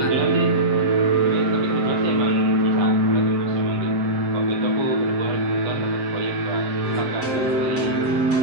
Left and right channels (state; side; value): late; left; 7.5 ms